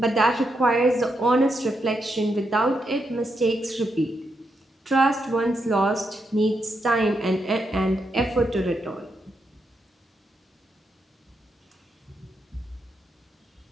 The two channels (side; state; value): both; normal; correlation 0.82